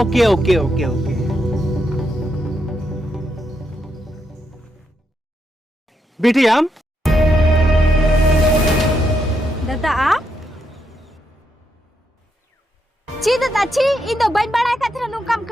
ओके ओके ओके बेटी आम दादा आप ची दादा ची इन दो बन बड़ा कथरा नु काम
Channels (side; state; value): both; normal; correlation 0.80